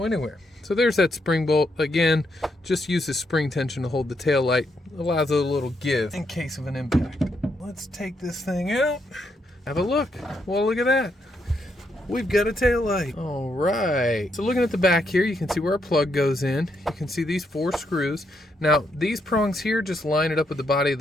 anywhere. So there's that spring bolt. Again, just use the spring tension to hold the taillight. Allows it a little give in case of an impact. Let's take this thing out. Have a look. Well, look at that. We've got a taillight. All right. So looking at the back here, you can see where our plug goes in. You can see these 4 screws. Now, these prongs here just line it up with the body of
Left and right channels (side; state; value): both; normal; correlation 0.78